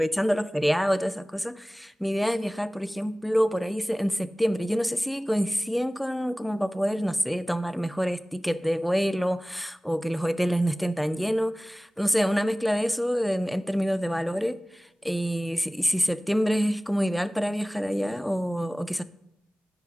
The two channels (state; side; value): normal; both; correlation 0.98